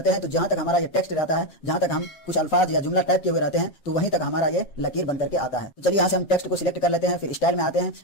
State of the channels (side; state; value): right; late; 7.4 ms